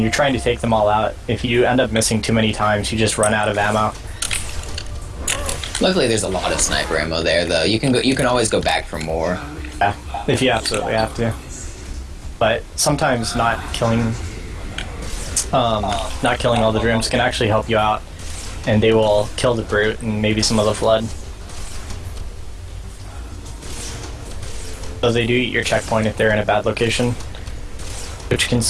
trying to take them all out. If you end up missing too many times, you just run out of ammo. Luckily, there's a lot of sniper ammo there, though. You can always go back for more. Yeah, if you absolutely have to. But sometimes not killing all the drones can actually help you out, and they will kill the brute and maybe some of the flood. So they do eat your checkpoint if they're in a bad location, which can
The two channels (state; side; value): identical; both; correlation 1.00